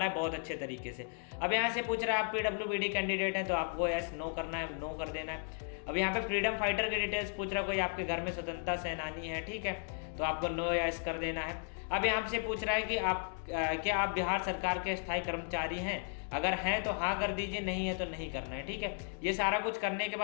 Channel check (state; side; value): silent; right; 54 dB below the other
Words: है बहुत अच्छे तरीके से। अब यहाँ से पूछ रहा है आप PWBD कैंडिडेट हैं तो आपको यस नो करना है, नो कर देना है। अब यहाँ पे फ्रीडम फाइटर के डिटेल्स पूछ रहा है, कोई आपके घर में स्वतंत्रता सेनानी है, ठीक है, तो आपको नो यस कर देना है। अब यहाँ से पूछ रहा है कि क्या आप बिहार सरकार के स्थायी कर्मचारी हैं, अगर हैं तो हाँ कर दीजिए, नहीं है तो नहीं करना है, ठीक है। ये सारा कुछ करने के